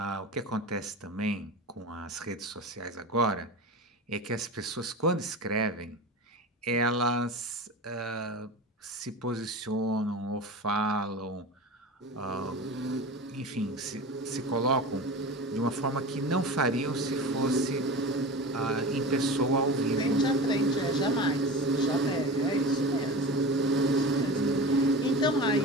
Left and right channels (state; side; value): normal; both; correlation 0.31